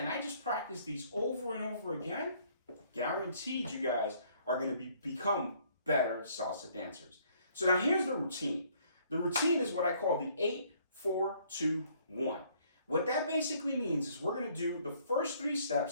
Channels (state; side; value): inverted; both; correlation -0.63